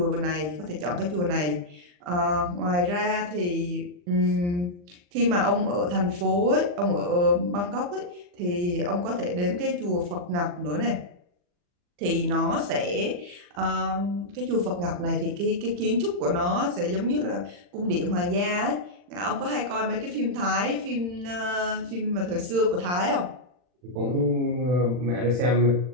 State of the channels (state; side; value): late; left; 40 ms